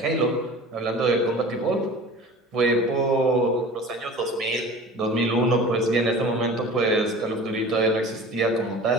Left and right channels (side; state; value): both; normal; correlation 0.40